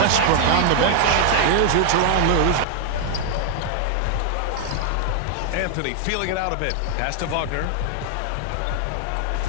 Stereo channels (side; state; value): both; different; correlation 0.00